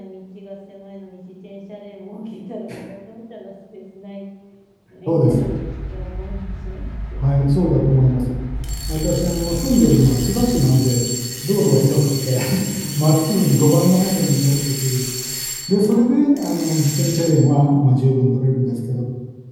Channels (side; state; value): both; identical; correlation 1.00